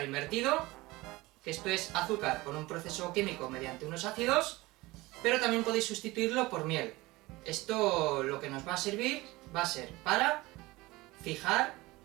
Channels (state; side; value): quieter; left; 20.8 dB